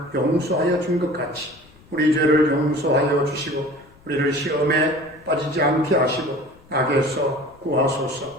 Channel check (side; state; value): left; noise; rumble, 26 dB below the sound